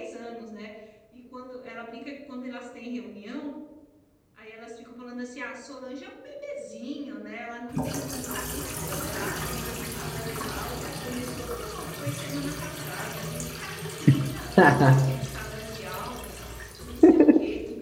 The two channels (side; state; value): both; identical; correlation 1.00